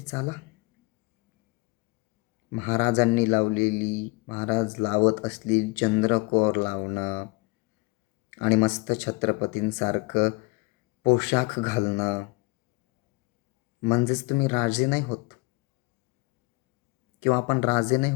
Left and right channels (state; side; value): quieter; right; 25.7 dB